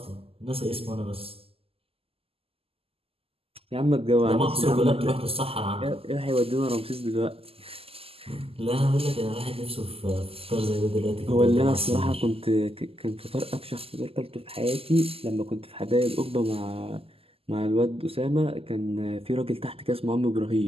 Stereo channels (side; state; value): left; late; 0.28 ms